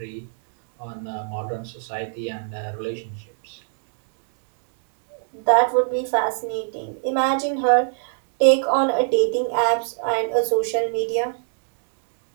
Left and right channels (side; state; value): left; silent; digital silence